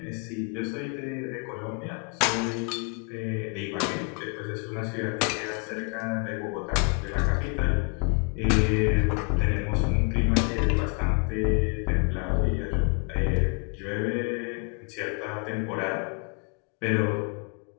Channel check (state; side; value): quieter; right; 37.1 dB